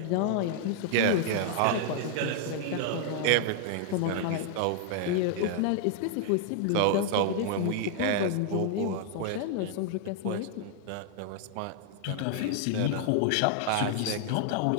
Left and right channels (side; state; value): both; different; correlation 0.00